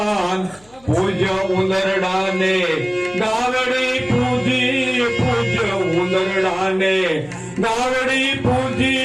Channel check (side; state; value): left; noise; hum, 29 dB below the sound